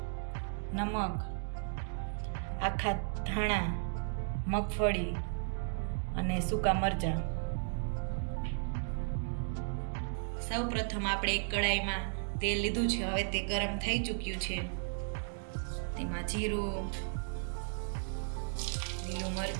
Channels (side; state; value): left; silent; digital silence